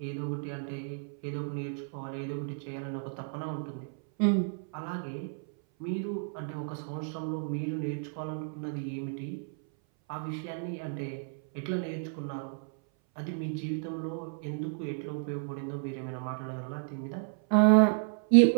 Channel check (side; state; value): left; silent; 56 dB below the other